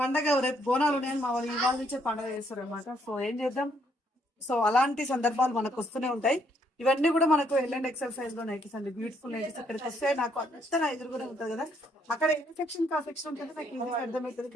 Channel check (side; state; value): both; normal; correlation 0.70